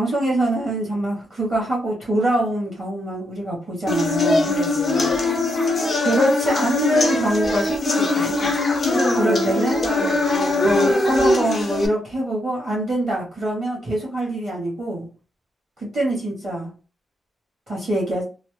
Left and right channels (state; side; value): normal; both; correlation 0.78